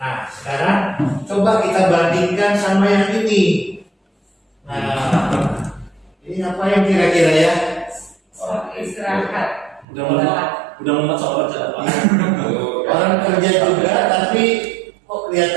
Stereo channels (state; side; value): drops out; left; at 9.9 s